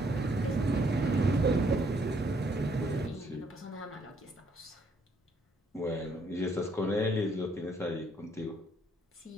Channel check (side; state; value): both; normal; correlation 0.68